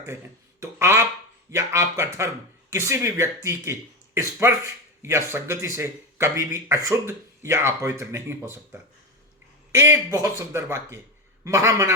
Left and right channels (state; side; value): normal; both; correlation 0.16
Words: हैं तो आप या आपका धर्म किसी भी व्यक्ति के स्पर्श या संगति से कभी भी अशुद्ध या अपवित्र नहीं हो सकता। एक बहुत सुंदर वाक्य